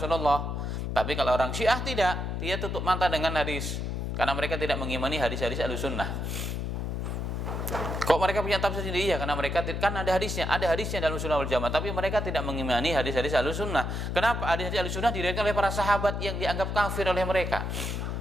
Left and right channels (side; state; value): left; noise; hum, 3 dB below the sound